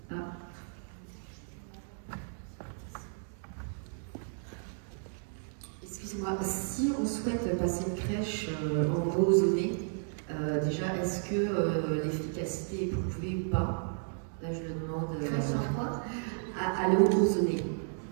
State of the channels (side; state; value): left; silent; 56 dB below the other